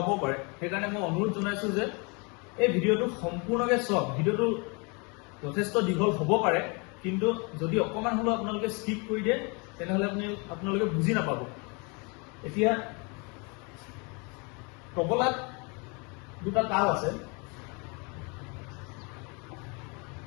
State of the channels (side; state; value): right; quieter; 31.7 dB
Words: পাৰে। সেইকাৰণে মই অনুৰোধ জনাইছোঁ যে এই ভিডিঅ'টো সম্পূৰ্ণকৈ চাওক। ভিডিঅ'টো যথেষ্ট দীঘল হ'ব পাৰে, কিন্তু যদি অকণমান হ'লেও আপোনালোকে স্কিপ কৰি দিয়ে, তেনেহ'লে আপোনালোকে বুজি নাপাব। এতিয়া তবলাত দুটা তাল আছে।